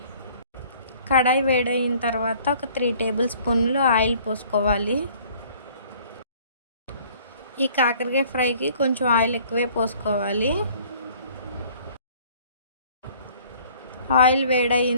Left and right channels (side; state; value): both; inverted; correlation -0.55